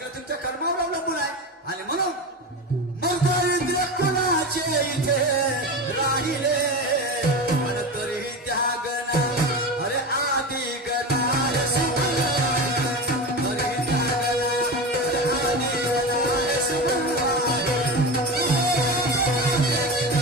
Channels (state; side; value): normal; both; correlation 0.23